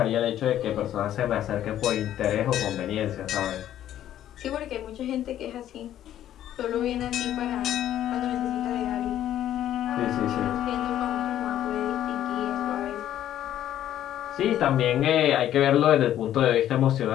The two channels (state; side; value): quieter; right; 11.7 dB